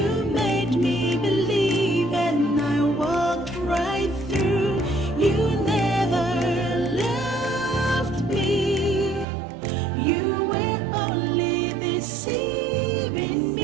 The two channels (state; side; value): drops out; left; at 9.2 s